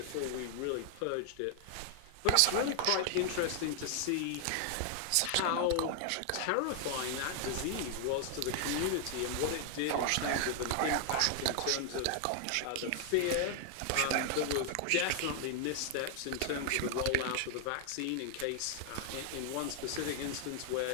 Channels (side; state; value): both; different; correlation 0.00